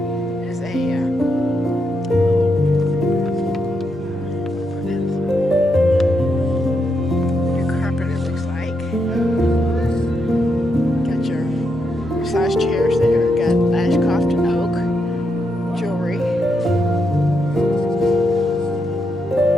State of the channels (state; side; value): normal; both; correlation 0.82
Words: is a new carpet, it looks like. Got your massage chairs there. Got Ashcroft and Oak jewelry.